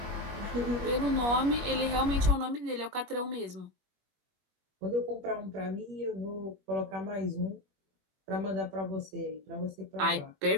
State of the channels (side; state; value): left; late; 21 ms